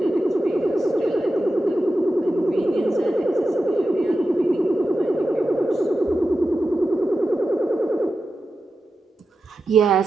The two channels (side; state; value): both; normal; correlation 0.91